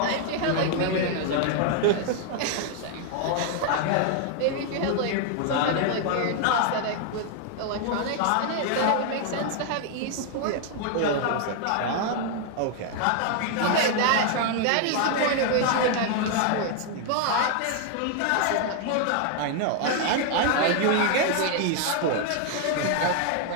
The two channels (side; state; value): both; different; correlation 0.00